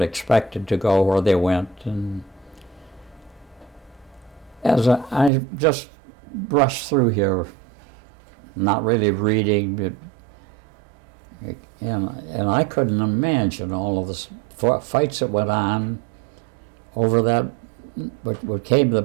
expected to go where they went. And as I just brushed through here, not really reading, and I couldn't imagine all of the fights that went on over that, what came to the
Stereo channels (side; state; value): left; drops out; at 5.3 s